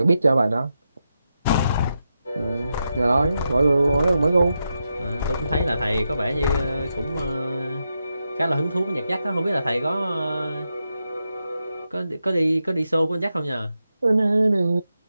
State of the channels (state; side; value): inverted; both; correlation -0.86